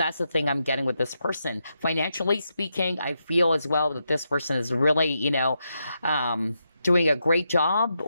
the thing I'm getting with this person. Financially speaking, I feel as well that this person is really, doing a great job,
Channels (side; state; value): both; inverted; correlation -0.84